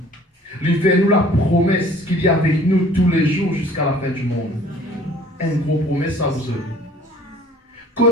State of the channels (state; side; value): normal; both; correlation 0.53